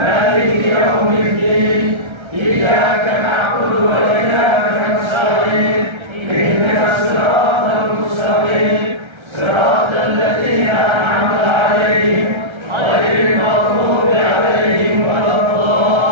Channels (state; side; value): late; left; 1.3 ms